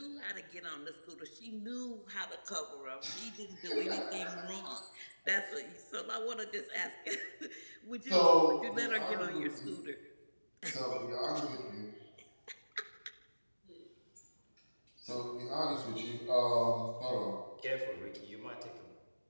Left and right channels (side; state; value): both; inverted; correlation -1.00